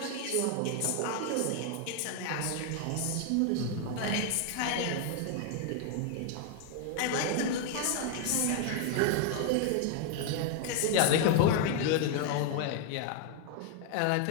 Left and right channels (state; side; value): different; both; correlation 0.00